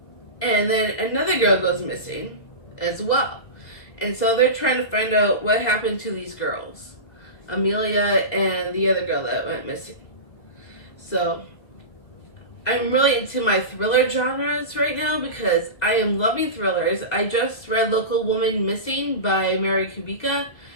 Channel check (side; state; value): right; late; 2.2 ms